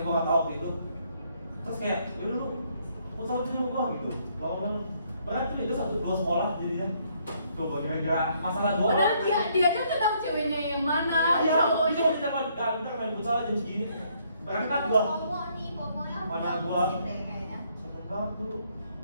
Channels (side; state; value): both; inverted; correlation -0.69